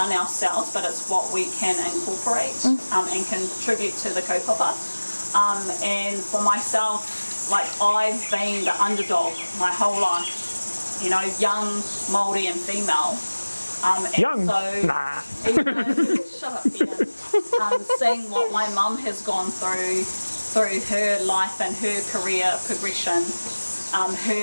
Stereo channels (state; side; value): inverted; both; correlation -1.00